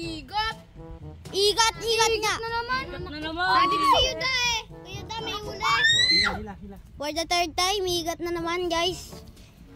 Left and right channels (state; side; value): identical; both; correlation 1.00